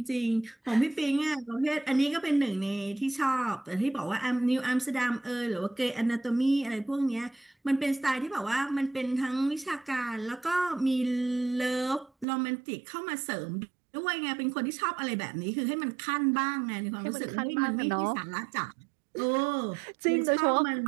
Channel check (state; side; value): drops out; left; at 12.2 s